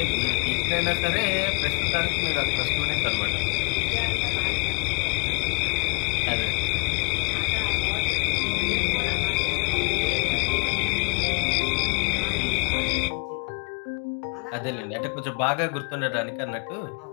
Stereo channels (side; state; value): right; quieter; 35.4 dB